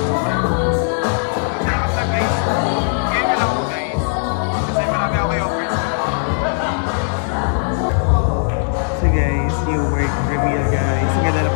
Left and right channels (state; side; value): silent; right; digital silence